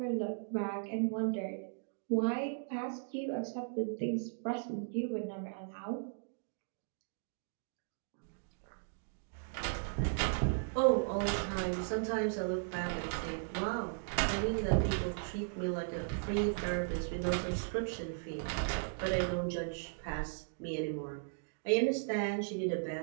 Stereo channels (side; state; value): left; silent; digital silence